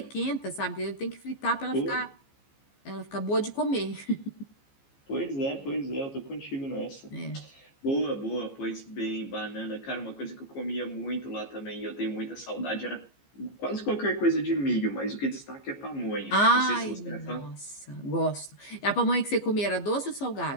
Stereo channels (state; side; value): late; right; 15 ms